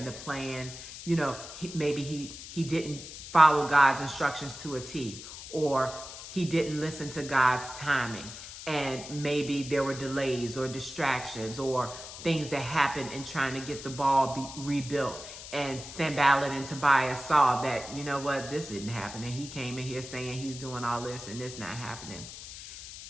the plan, maybe he didn't follow God's instructions to a T, or he didn't listen to God's timing. And maybe there were delays or distractions or things that happened in trying to get the wall rebuilt. And Sanballat and Tobias saw that, this didn't happen. And he came in here saying he's doing all this and it's not happening.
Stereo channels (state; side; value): noise; left; hiss, 12 dB below the sound